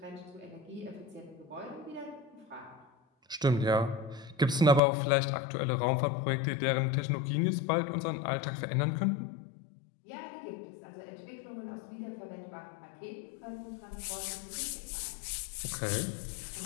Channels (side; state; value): right; drops out; at 4.8 s